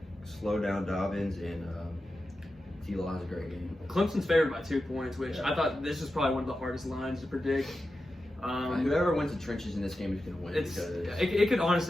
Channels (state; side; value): normal; both; correlation 0.92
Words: slow down Dobbins, and T-Law has a great game. Clemson's favored by 2 points, which I thought this was probably one of the hardest lines to predict. Whoever wins the trenches in this game is going to win. It could